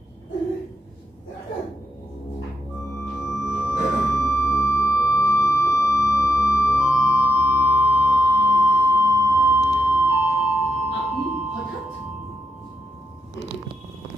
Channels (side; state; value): both; normal; correlation 0.83